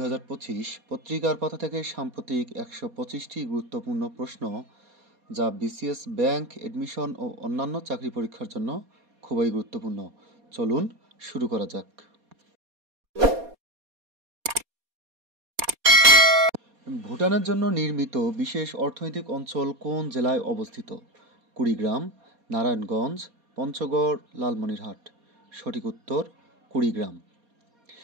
পত্রিকার পাতা থেকে সাম্প্রতিক ১২৫টি গুরুত্বপূর্ণ প্রশ্ন যা বিসিএস, ব্যাংক, এডমিশন ও অন্যান্য চাকরি পরীক্ষার জন্য খুবই গুরুত্বপূর্ণ। চলুন শুরু করা যাক। ভুটানের জন্য নির্মিত বিশেষ অর্থনৈতিক অঞ্চল কোন জেলায় অবস্থিত? কুড়িগ্রাম, নারায়ণগঞ্জ, পঞ্চগড়, লালমনিরহাট। সঠিক উত্তর কুড়িগ্রাম।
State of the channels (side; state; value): left; late; 4.2 ms